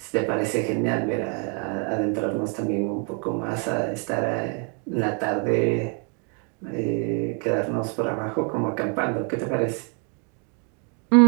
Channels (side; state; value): left; quieter; 38.9 dB